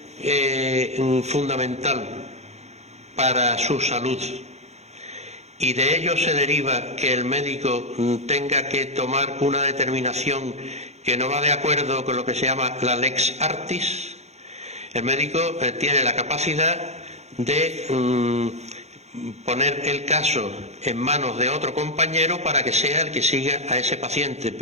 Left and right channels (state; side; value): late; left; 0.32 ms